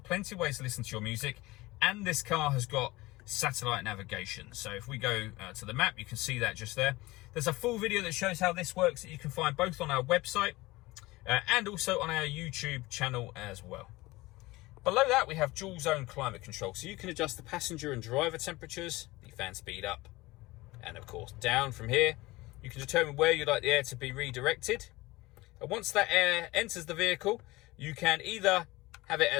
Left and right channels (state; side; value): quieter; right; 20.5 dB